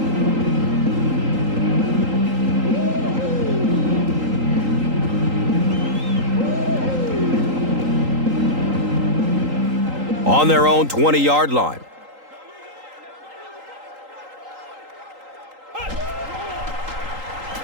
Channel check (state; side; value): late; left; 3.8 ms